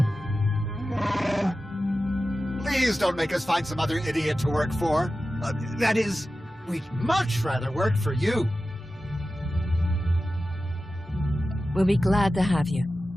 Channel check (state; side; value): normal; both; correlation 0.94